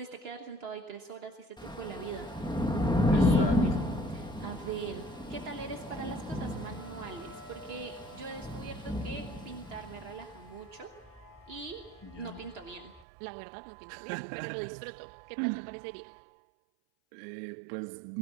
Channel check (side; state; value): left; drops out; at 13.1 s